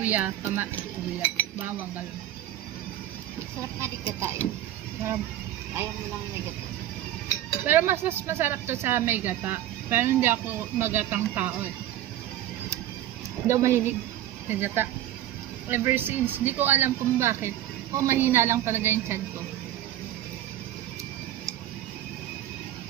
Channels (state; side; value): quieter; left; 12.9 dB